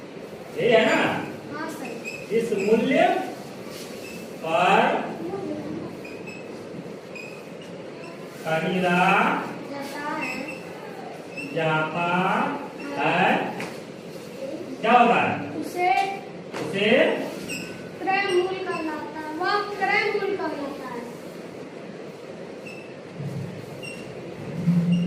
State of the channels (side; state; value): both; identical; correlation 1.00